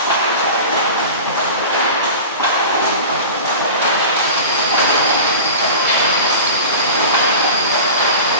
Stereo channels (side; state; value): both; inverted; correlation -0.33